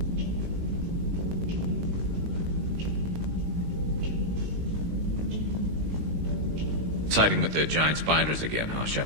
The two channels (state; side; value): late; left; 19 ms